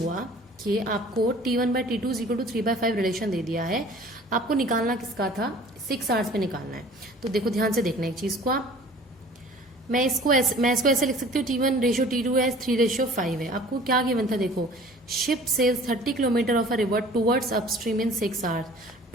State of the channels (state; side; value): normal; both; correlation 0.48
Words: कि आपको T1/T2 = 3/5 रिलेशन दे दिया है, आपको निकालना किसका था, 6 आवर्स पे निकालना है। तो देखो ध्यान से देखना एक चीज को आप, मैं इसको ऐसे लिख सकती हूँ, T1:T2 है, 3:5 है। आपको क्या गिवन था, देखो ship sails 30 kilometre of a river towards upstream in 6 hours.